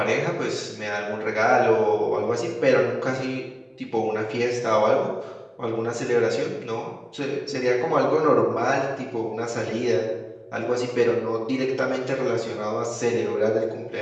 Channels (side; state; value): both; identical; correlation 1.00